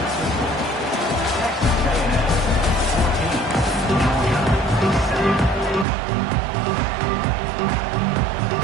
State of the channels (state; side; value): drops out; left; at 5.9 s